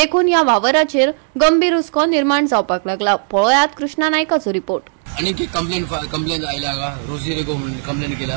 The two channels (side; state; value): left; silent; digital silence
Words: या वावराचेर गंभीर हुस्को निर्माण जावपाक लागला। पळयात कृष्णा नायकाचो रिपोर्ट। आणि कंप्लेंट आयला हांगा रोजी कंप्लेंट केला